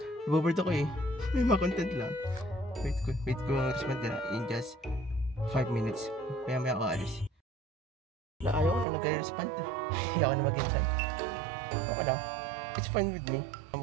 Ibabard ako eh. May mga content lang. Wait ko mag-respond na in just 5 minutes. Maya ako aalis. Ayaw ko na nag-respond. Ayaw ko na mag-intend. Okay lang. It's fine with me.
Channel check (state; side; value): drops out; left; at 8.8 s